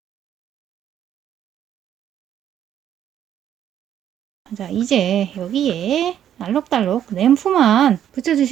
자, 이제 여기에 알록달록 램프만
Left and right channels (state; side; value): quieter; left; 10.3 dB